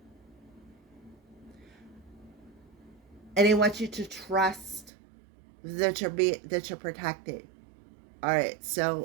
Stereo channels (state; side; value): drops out; left; at 4.9 s